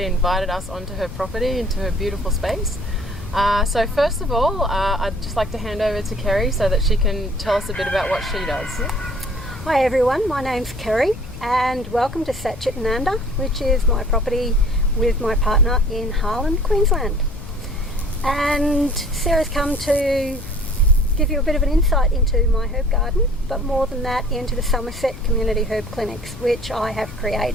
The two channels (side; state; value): left; noise; rumble, 13 dB below the sound